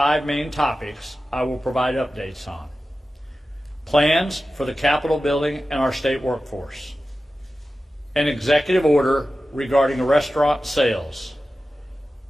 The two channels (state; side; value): normal; both; correlation 0.94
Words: main topics I will provide updates on. Plans for the Capitol building and our state workforce. An executive order regarding restaurant sales.